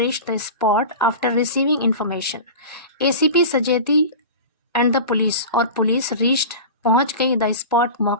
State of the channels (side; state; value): both; inverted; correlation -0.31